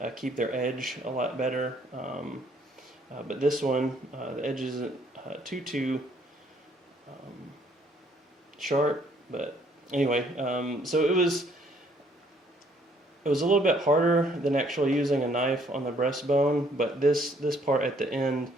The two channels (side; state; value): both; normal; correlation 0.64